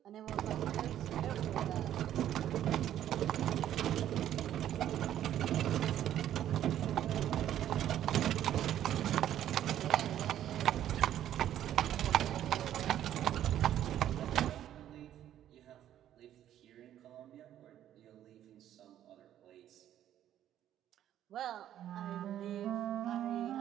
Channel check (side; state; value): left; quieter; 11.4 dB